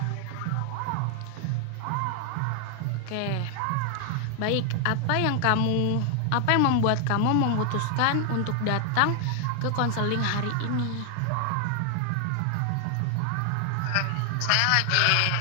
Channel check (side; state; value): both; different; correlation 0.00